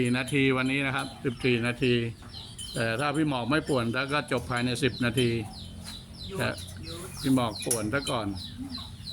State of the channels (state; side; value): identical; both; correlation 1.00